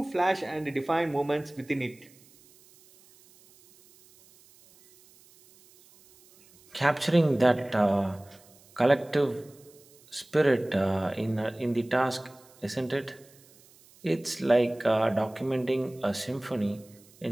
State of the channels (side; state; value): right; noise; hiss, 27 dB below the sound